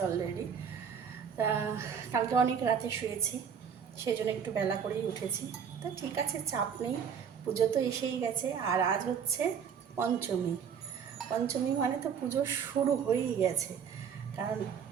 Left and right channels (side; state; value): left; quieter; 7.3 dB